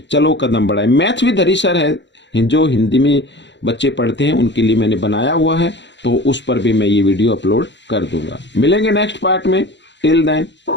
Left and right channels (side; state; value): right; late; 0.52 ms